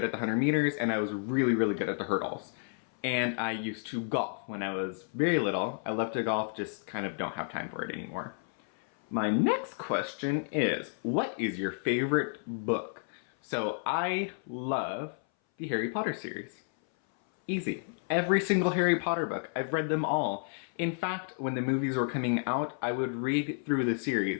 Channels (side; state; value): right; silent; 57 dB below the other